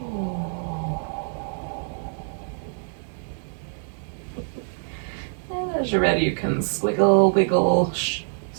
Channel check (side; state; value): left; silent; 62 dB below the other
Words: And as you're ready, you can squiggle, wiggle,